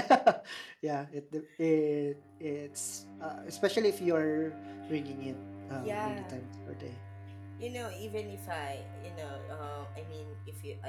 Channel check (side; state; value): both; identical; correlation 1.00